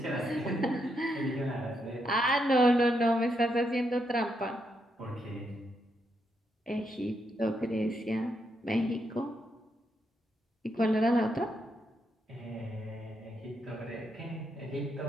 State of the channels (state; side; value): normal; both; correlation 0.80